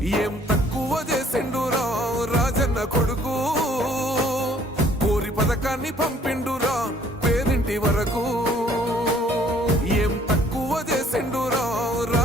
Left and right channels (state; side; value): normal; both; correlation 0.59